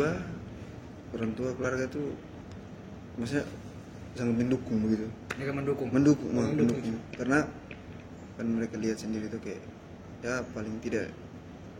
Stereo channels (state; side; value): identical; both; correlation 1.00